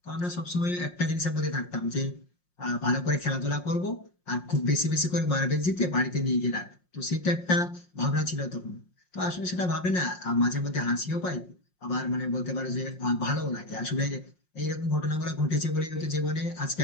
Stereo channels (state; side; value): late; right; 5.6 ms